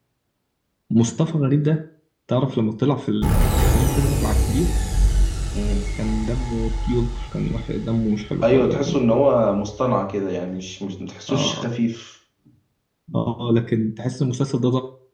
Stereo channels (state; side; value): identical; both; correlation 1.00